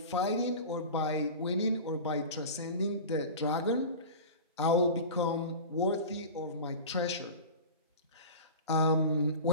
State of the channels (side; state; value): both; inverted; correlation -0.33